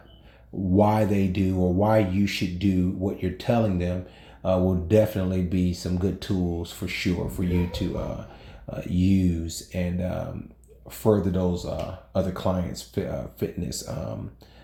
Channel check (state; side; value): identical; both; correlation 1.00